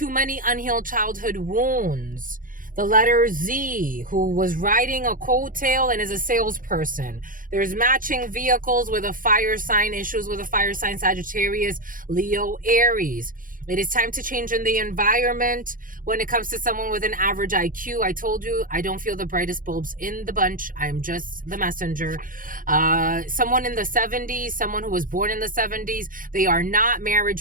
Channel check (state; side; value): late; left; 0.40 ms